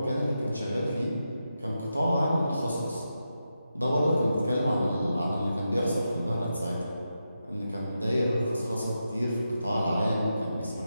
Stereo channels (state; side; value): inverted; both; correlation -0.88